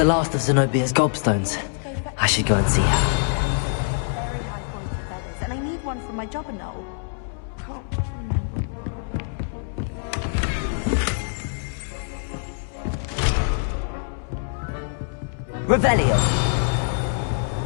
last of Zenobia's gobstones. I should go and see her. Very high quality feathers, and I need one for my job and all. Can't remember. Revelio.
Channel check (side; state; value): right; silent; 62 dB below the other